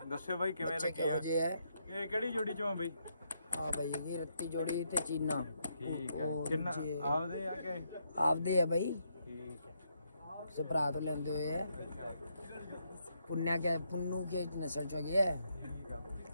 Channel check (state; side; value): inverted; both; correlation -0.78